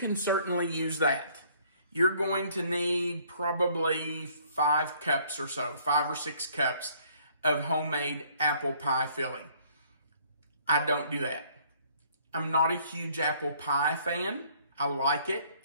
certainly use that. You're going to need probably 5 cups or so, 5 or 6 cups of homemade apple pie filling. I don't do that. I'm not a huge apple pie fan. I like it.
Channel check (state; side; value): inverted; both; correlation -0.61